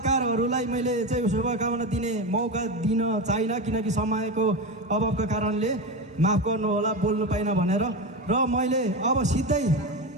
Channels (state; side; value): normal; both; correlation 0.19